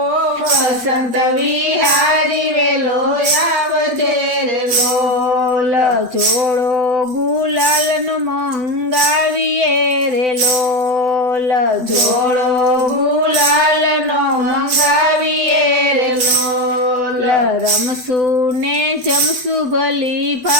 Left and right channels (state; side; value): late; left; 7.9 ms